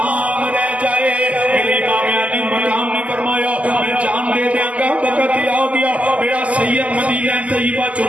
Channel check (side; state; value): left; late; 0.070 ms